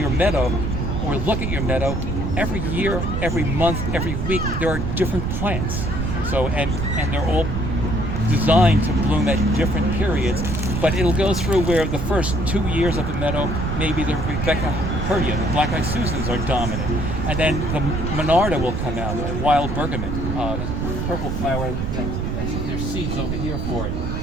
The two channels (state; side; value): noise; right; rumble, 2 dB below the sound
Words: meadow or look at your meadow, every year, every month, every week, there are different plants. So and they're all designed to bloom at different periods, but it'll go through where the first 2 years of the meadow, maybe the Rebecca Herta, the black-eyed Susans are dominant, and then the Monarda will come out, the wild bergamot, purple flower. There's seeds over here for it.